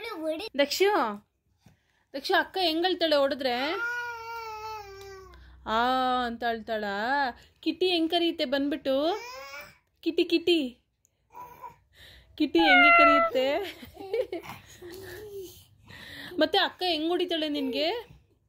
ದಕ್ಷು ದಕ್ಷು ಅಕ್ಕ ಹೆಂಗಳ್ತಾಳೆ ಹೊಡೆದ್ರೆ? ಆ ಅಂತ ಅಳ್ತಾಳ. ಕಿಟಿ ಹೆಂಗ್ ಕರೆಯುತ್ತೆ ಬಂದ್ಬಿಟ್ಟು? ಕಿಟಿ ಕಿಟಿ ಕಿಟಿ ಹೆಂಗೆ ಕರೆಯುತ್ತೆ? ಮತ್ತೆ ಅಕ್ಕ ಹೆಂಗ್ ಹೊಡಿತಾಳೆ ನಿನ್ಗೆ?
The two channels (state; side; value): identical; both; correlation 1.00